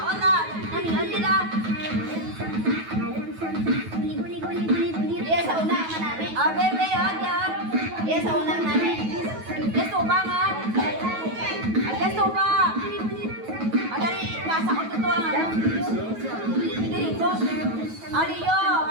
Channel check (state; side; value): late; left; 9.3 ms